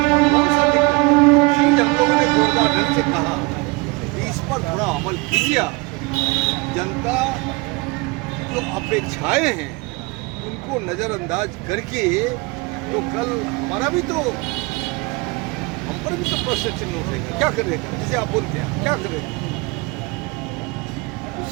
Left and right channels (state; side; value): quieter; left; 25.8 dB